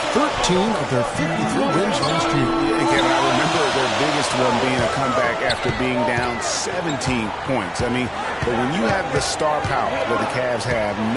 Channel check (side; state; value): both; identical; correlation 1.00